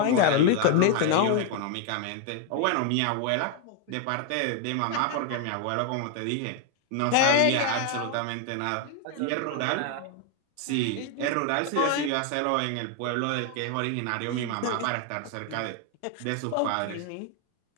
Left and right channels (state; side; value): different; both; correlation 0.01